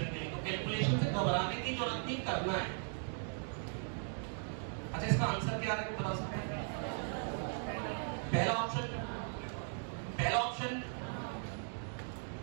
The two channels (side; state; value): left; silent; 52 dB below the other